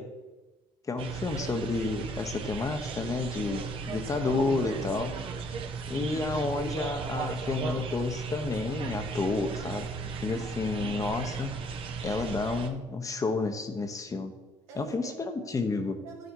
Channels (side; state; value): both; normal; correlation 0.65